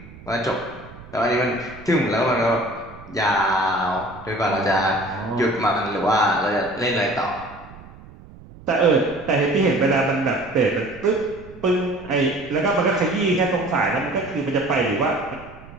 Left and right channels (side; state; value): right; noise; rumble, 19 dB below the sound